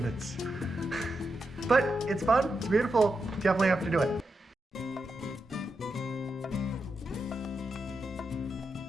But it's fun, it's beautiful, definitely have to do it.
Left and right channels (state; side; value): normal; both; correlation 0.86